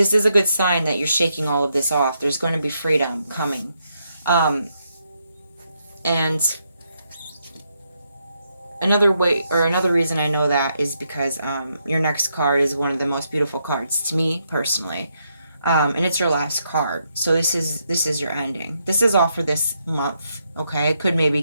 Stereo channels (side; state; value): both; inverted; correlation -0.79